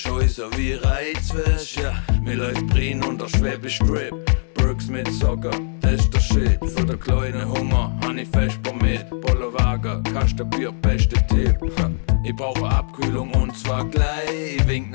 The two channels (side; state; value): right; silent; digital silence